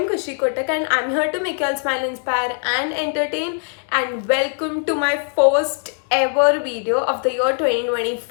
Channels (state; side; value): silent; right; 58 dB below the other